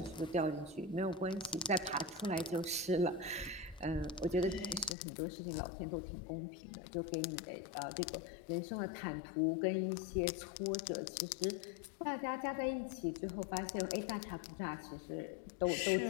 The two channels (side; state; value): right; drops out; at 5.0 s